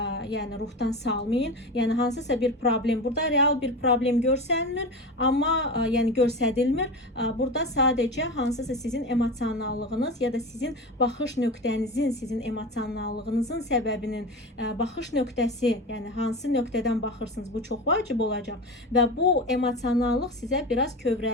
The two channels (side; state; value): both; normal; correlation 0.26